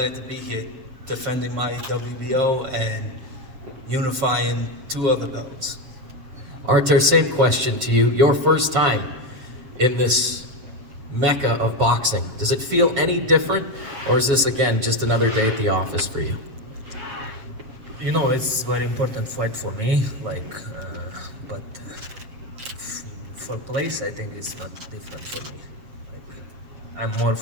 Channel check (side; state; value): left; late; 7.1 ms